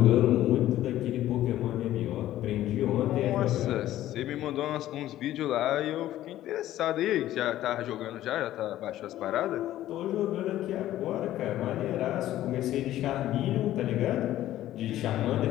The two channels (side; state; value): right; quieter; 13.7 dB